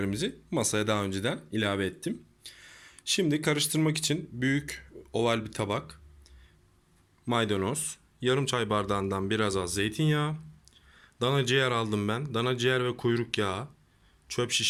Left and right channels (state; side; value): identical; both; correlation 1.00